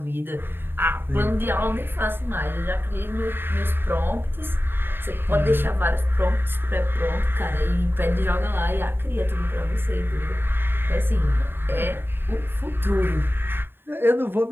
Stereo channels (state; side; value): late; left; 0.10 ms